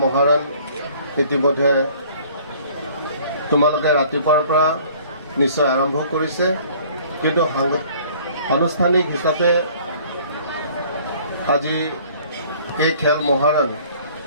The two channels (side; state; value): both; inverted; correlation -0.54